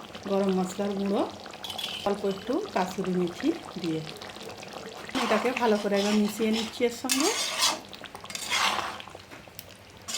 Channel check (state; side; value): identical; both; correlation 1.00